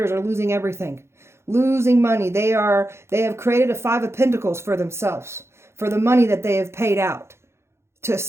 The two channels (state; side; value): late; left; 0.13 ms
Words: are losing everything, losing money. They have created a 5 of Pentacles for themselves, for the money that they have paid out to